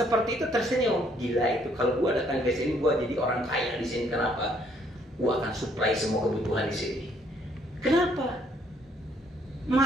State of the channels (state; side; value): normal; both; correlation 0.67